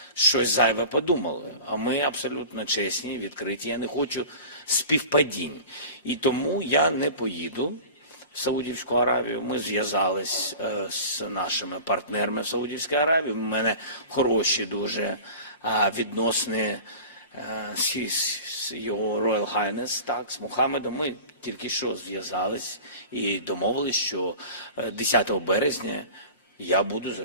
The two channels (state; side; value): inverted; both; correlation -0.37